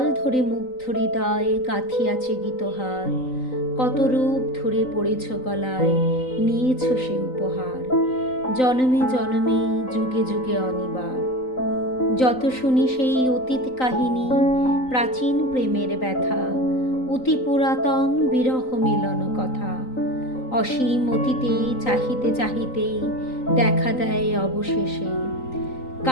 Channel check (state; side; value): late; right; 3.9 ms